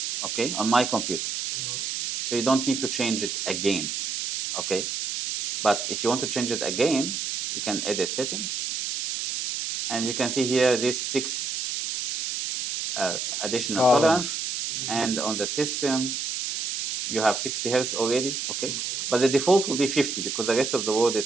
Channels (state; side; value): noise; right; hiss, 3 dB below the sound